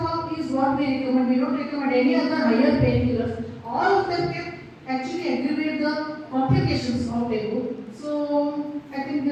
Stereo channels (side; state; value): both; identical; correlation 1.00